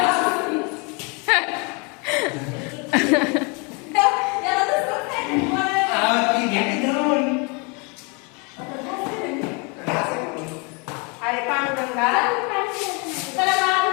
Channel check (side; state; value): right; quieter; 31.9 dB